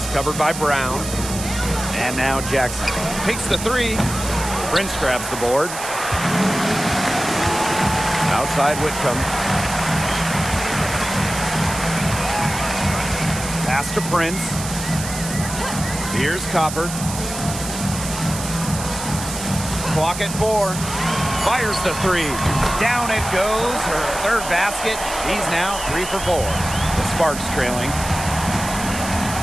covered by Brown. And now Jackson takes the 3. Prince grabs the board. Outside Whitcomb. Pass to Prince. Here's Copper. Clock at 4. Fires the 3. Down it goes. Her third basket. She's now 3 for 4. The Sparks trailing.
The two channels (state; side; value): noise; right; hiss, 8 dB below the sound